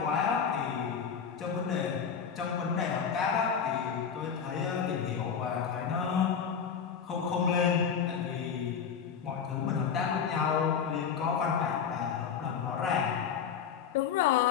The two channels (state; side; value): quieter; right; 7.1 dB